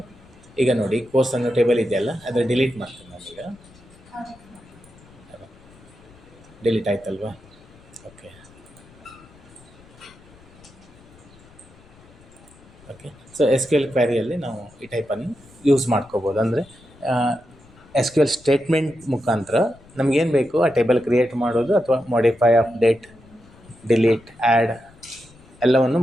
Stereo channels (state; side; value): noise; left; rumble, 25 dB below the sound